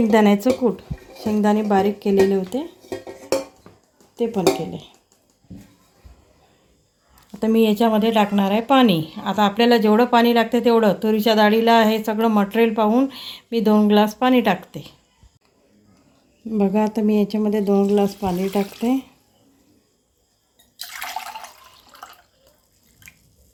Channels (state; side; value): identical; both; correlation 1.00